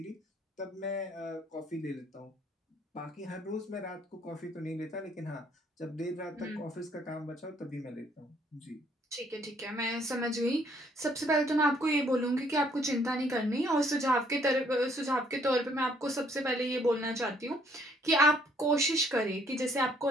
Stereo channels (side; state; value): both; normal; correlation 0.64